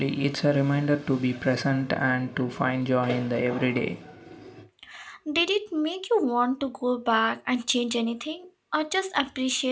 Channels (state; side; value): identical; both; correlation 1.00